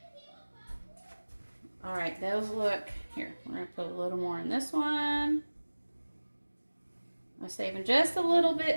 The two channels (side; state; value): both; inverted; correlation -1.00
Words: All right, those look, here, we're gonna put a little more in this one. I'm saving just a little